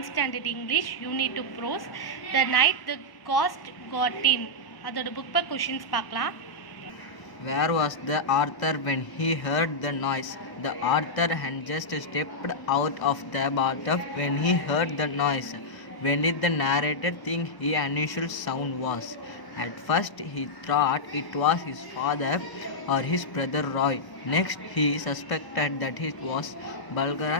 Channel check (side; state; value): right; late; 1.0 ms